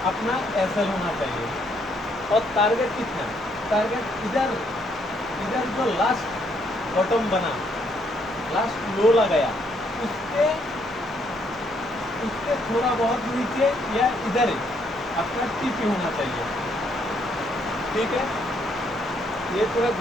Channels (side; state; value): both; normal; correlation 0.71